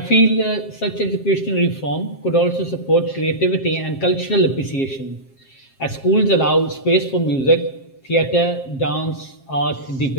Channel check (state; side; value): late; right; 7.5 ms